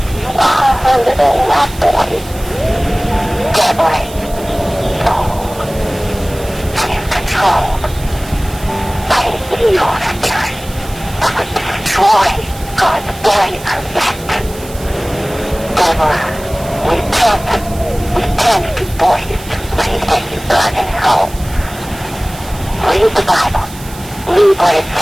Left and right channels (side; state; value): right; noise; hiss, 17 dB below the sound